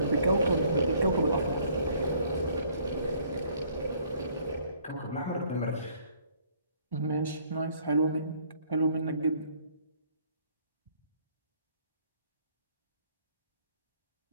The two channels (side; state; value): both; inverted; correlation -0.61